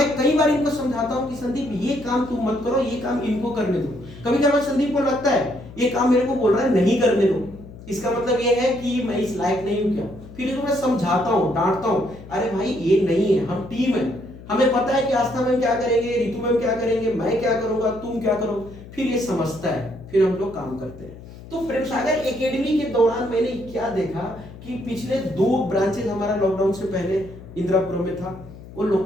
कई बार इनको समझाता हूं कि संदीप ये काम तुम मत करो, ये काम इनको करने दो। कभी कभी संदीप को लगता है ये काम मेरे को बोल रहा है नहीं करने दो, इसका मतलब ये है कि मैं इस लायक नहीं हूं क्या। फिर इसको मैं समझाता हूं, डांटता हूं, अरे भाई ये नहीं है, हम टीम है, हमें पता है कि आस्था मैम क्या करेंगे, रितु मैम क्या करेंगे, मैं क्या करूंगा, तुम क्या करो, फिर ये समझता है, फिर हम लोग काम करते हैं। तो प्रेम सागर एकेडमी के दौरान मैंने क्या देखा कि पिछले 2 ब्रांचेस हमारा लॉकडाउन से पहले इंदिरापुरम में था, वो लोग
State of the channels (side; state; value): left; noise; hum, 17 dB below the sound